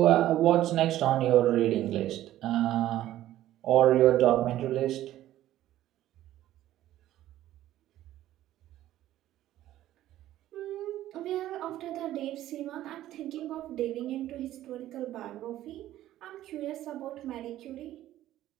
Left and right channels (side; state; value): left; quieter; 13.7 dB